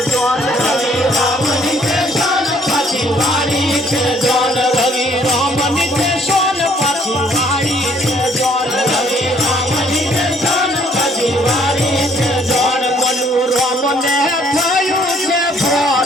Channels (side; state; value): both; normal; correlation 0.63